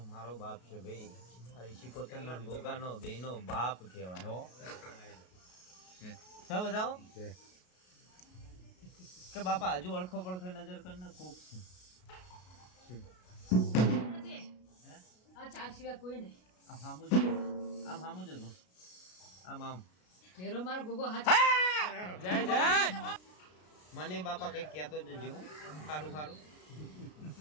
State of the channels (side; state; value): right; late; 33 ms